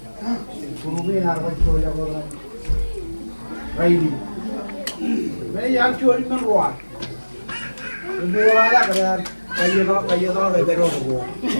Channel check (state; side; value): inverted; both; correlation -1.00